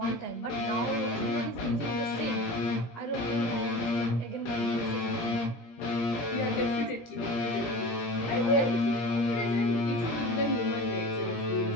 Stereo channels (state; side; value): late; right; 17 ms